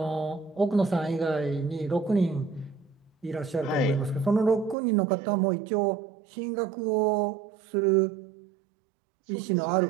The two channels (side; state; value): left; drops out; at 4.8 s